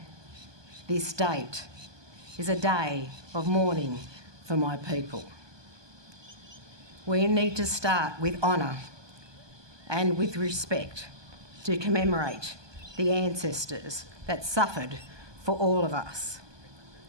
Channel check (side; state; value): left; late; 1.2 ms